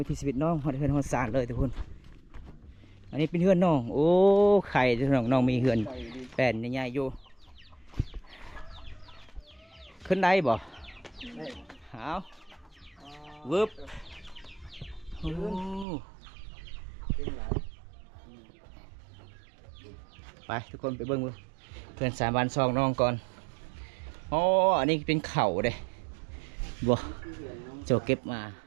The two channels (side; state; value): left; drops out; at 15.9 s